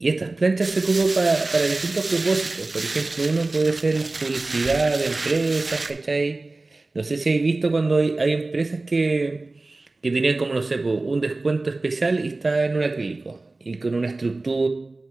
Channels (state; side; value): quieter; left; 3.2 dB